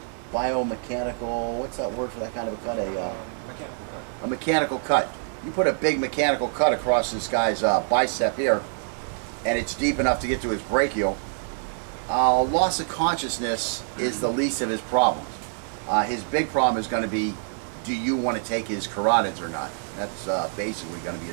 Biomechanical, what's that word for that kind of a cut? Mechanical cut. A mechanical cut. You put a big mechanical cut across this guy's bicep here, and it's deep enough to get to his brachial. Loss of consciousness is the least of his problems. His big problem is going to be, do you want to take his carotids or not? That's basically going to be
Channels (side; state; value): left; silent; 55 dB below the other